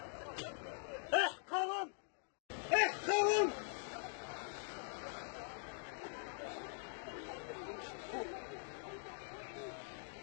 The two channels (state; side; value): silent; right; digital silence